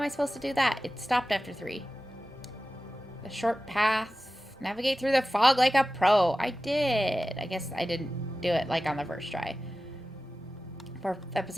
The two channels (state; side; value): normal; both; correlation 0.95